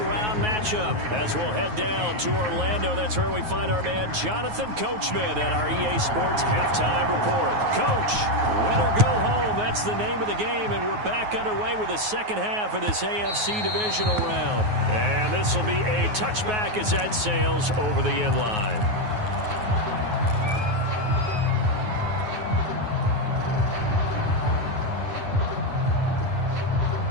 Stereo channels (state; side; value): late; left; 9.4 ms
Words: round matchup. As we'll head down to Orlando, that's where we find our man Jonathan Coachman at our EA Sports Halftime Report. Coach, win or go home, that's the name of the game, and we're back underway with the second half of this AFC divisional round. And this will be a touchback as that sails over the end line.